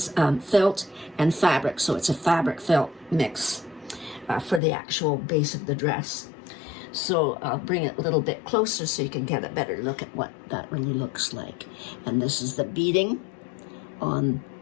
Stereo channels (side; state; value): right; drops out; at 4.6 s